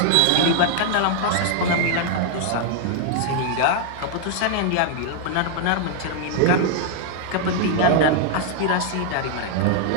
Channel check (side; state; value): both; different; correlation 0.00